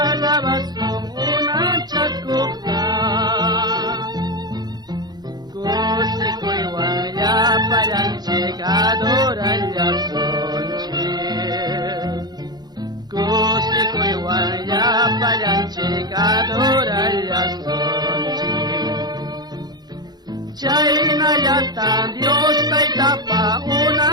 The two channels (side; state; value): left; late; 0.20 ms